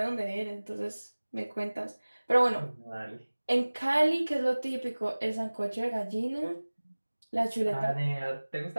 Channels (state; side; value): inverted; both; correlation -1.00